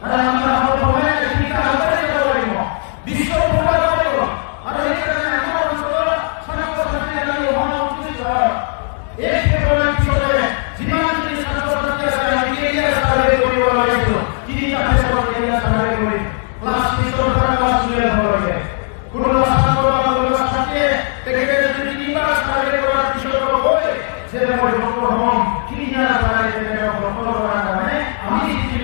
কারণ আমরা সময়ে ভূমিকা আমাদের করব বিশ্ব পূর্ণ করব আর এই কারণে আমরা হলো ছাত্র-ছাত্রীদের মহামন্ত্রী এই প্রোগ্রামের পিছনে জীবন যদি ছাত্র-ছাত্রী আছে আমি এরিয়া সার্ভে করি বলা হয়েছিল কি আপনি সব এরিয়া সার্ভে করি ক্লাস 3 ক্লাস 2 এর হবে কোনো ছাত্র আমাদের সাথে দেখে যদি তিনবার সার্ভে করার বিষয় হয় যে হম কি না পারে এটা প্রপোজ করার কারণে আমি কি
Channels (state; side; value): silent; right; 55 dB below the other